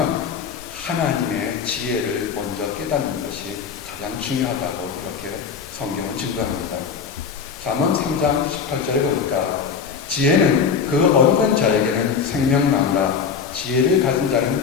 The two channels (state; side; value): quieter; right; 6.3 dB